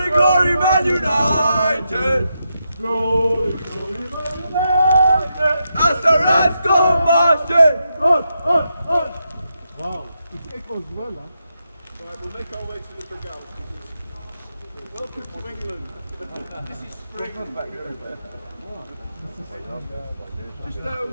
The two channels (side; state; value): both; inverted; correlation -0.84